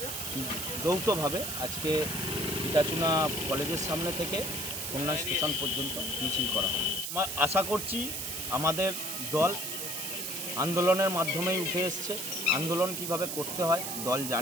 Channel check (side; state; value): right; noise; hiss, 4 dB below the sound